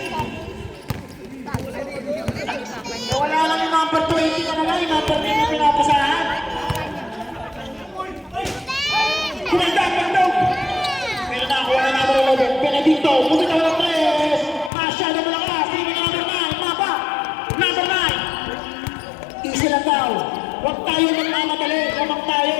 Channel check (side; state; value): right; drops out; at 14.7 s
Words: Wala lang yung number 20 ka na lang, yung number 10 yung pinapasahan. Kumanda, pagdog. Pero nakakuha na number 11, Benedicto, bumitaw ng 3. Masyado malakas, tingin number 9, mapa. Number 9. Easy lang daw. Huwag tayo magmamadali, lamang